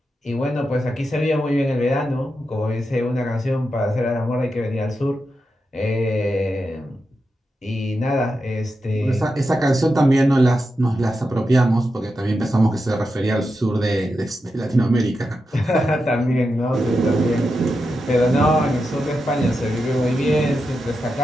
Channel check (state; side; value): normal; both; correlation 0.88